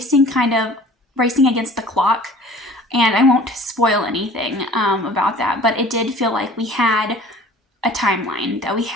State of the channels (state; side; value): normal; both; correlation 0.47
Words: kind of racing against the clock. And I won't spoil anything about that, but it did feel like we had a timeline that we